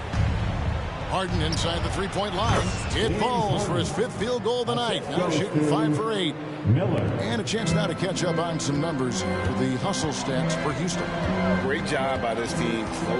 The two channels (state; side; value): identical; both; correlation 1.00